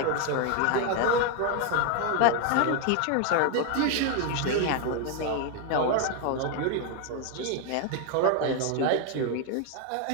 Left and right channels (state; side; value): different; both; correlation 0.01